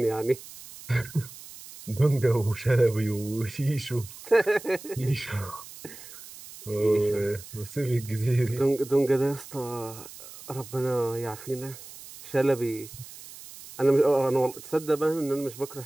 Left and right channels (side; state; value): right; noise; hiss, 16 dB below the sound